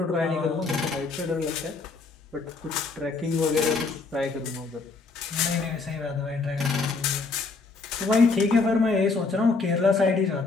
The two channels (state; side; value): quieter; right; 4.1 dB